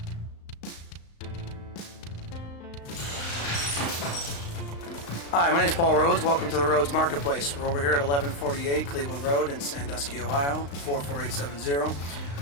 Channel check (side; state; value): right; late; 35 ms